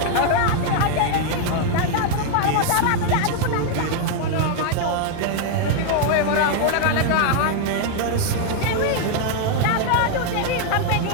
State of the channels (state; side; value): different; both; correlation 0.00